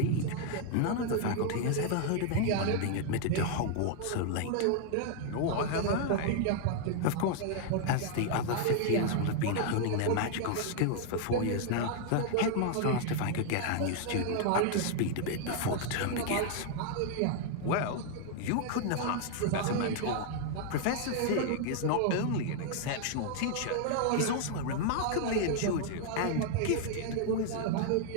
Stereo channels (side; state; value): both; different; correlation 0.00